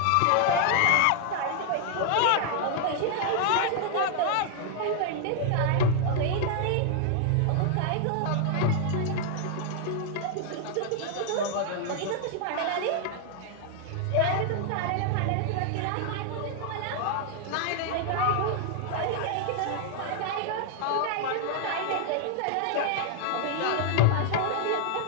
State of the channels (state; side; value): different; both; correlation 0.00